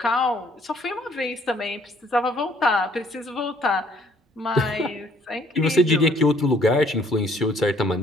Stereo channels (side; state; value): both; normal; correlation 0.62